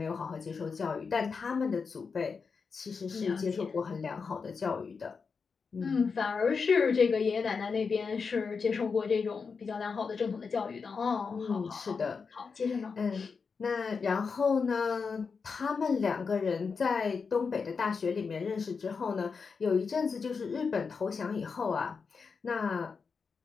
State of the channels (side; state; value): right; quieter; 5.3 dB